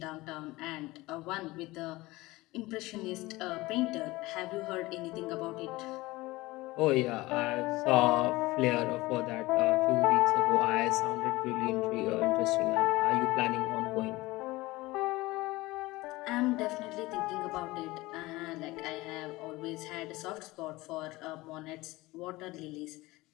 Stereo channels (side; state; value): right; quieter; 20.2 dB